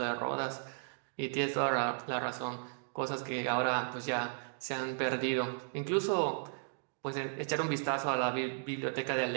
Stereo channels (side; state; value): left; silent; digital silence